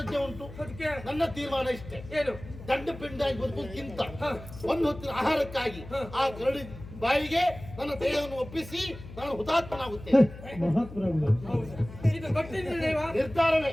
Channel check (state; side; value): noise; left; hum, 14 dB below the sound